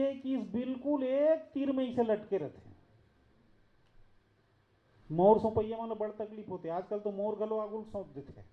कि इस बिल्कुल एक तीर में इसे लटके रहते हैं। मोर सौंपैया मानो बड़ तकलीफ होती है, आजकल तो मोर गलो आगुल सौंप देते हैं,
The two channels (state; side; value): identical; both; correlation 1.00